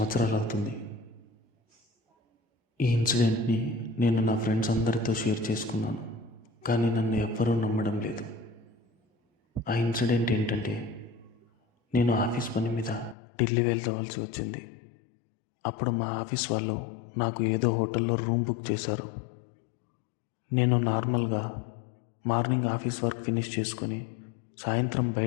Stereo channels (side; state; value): right; drops out; at 13.2 s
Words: అవుతుంది. ఈ ఇన్సిడెంట్ని నేను నా ఫ్రెండ్స్ అందరితో షేర్ చేసుకున్నాను, కానీ నన్ను ఎవ్వరూ నమ్మడం లేదు. ఆ ఇన్సిడెంట్ ఏంటంటే, నేను ఆఫీస్ పని మీద ఢిల్లీ వెళ్ళవలసి వచ్చింది. అప్పుడు మా ఆఫీస్ వాళ్ళు నాకు ఏదో హోటల్లో రూమ్ బుక్ చేశారు. నేను నార్మల్గా మార్నింగ్ ఆఫీస్ వర్క్ ఫినిష్ చేసుకొని సాయంత్రం